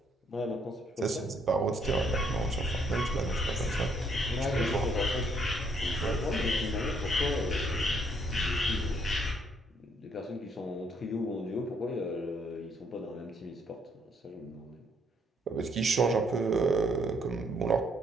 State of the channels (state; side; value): normal; both; correlation 0.69